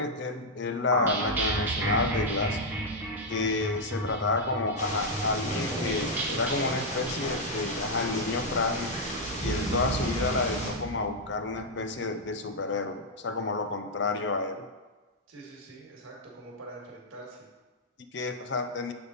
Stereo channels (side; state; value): both; normal; correlation -0.02